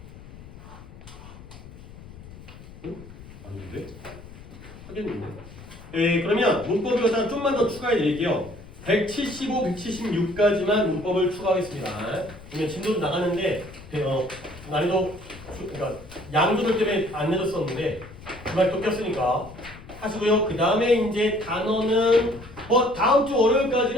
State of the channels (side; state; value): left; noise; rumble, 17 dB below the sound